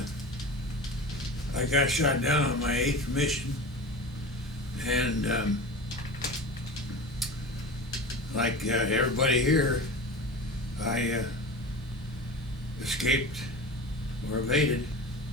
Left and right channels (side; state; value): both; normal; correlation 0.32